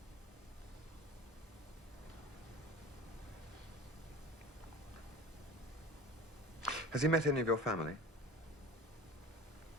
Has he met any of your family?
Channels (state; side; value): normal; both; correlation 0.37